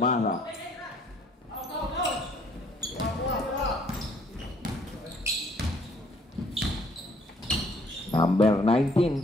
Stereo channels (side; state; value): both; normal; correlation 0.62